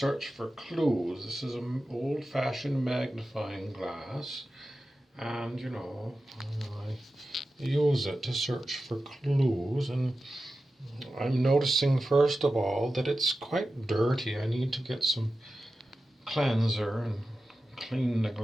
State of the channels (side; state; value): both; normal; correlation 0.93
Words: for clues. This is an old-fashioned magnifying glass, and, I use it to search for clues, and I'm noticing, first of all, that it's quite dirty. I need to get some cleanser and clean the